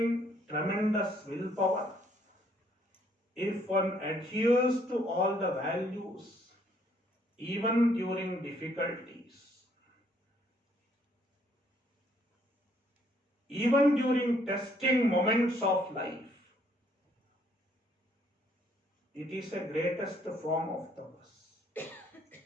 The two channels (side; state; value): both; normal; correlation 0.66